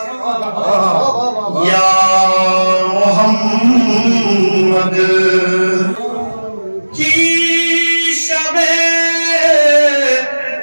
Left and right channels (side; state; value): both; inverted; correlation -1.00